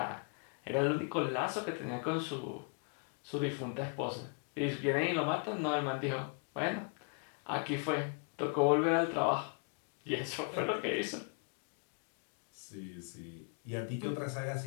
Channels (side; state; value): right; quieter; 39.2 dB